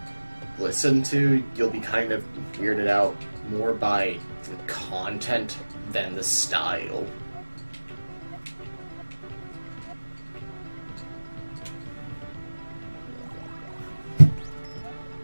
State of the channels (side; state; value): both; inverted; correlation -1.00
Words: listen to, you'll be kind of weirded out more by the content than the style.